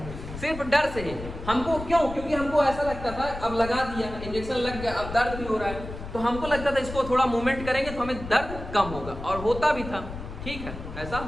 सिर्फ डर से ही। हमको क्यों, क्योंकि हमको ऐसा लगता था अब लगा दिया, इंजेक्शन लग गया, अब दर्द भी हो रहा है, तो हमको लगता था इसको थोड़ा मूवमेंट करेंगे तो हमें दर्द कम होगा, और होता भी था, ठीक है, ऐसा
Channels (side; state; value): left; noise; rumble, 10 dB below the sound